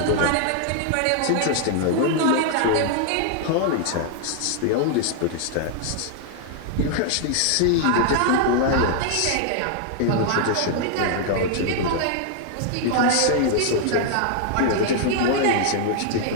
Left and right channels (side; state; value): both; different; correlation 0.00